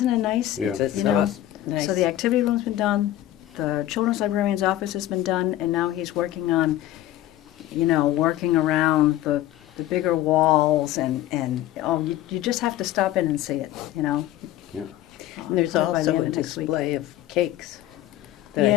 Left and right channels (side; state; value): right; quieter; 13.7 dB